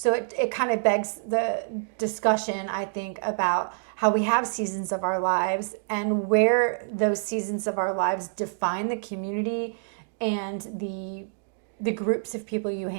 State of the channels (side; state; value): left; silent; digital silence